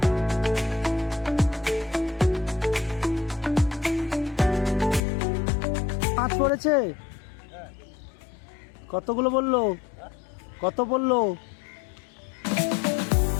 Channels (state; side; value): drops out; right; at 5.0 s